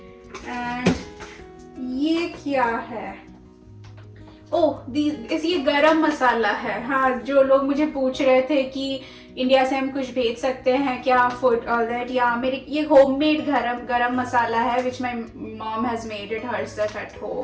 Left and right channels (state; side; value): identical; both; correlation 1.00